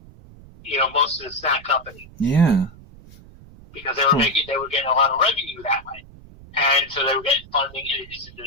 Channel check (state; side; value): noise; right; rumble, 21 dB below the sound